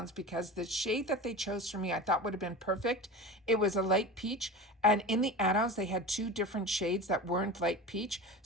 because the shade that they chose for me I thought would have been perfect. It was a light peach, and in the add-ons they had two different shades that weren't light peach,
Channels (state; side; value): normal; both; correlation 0.31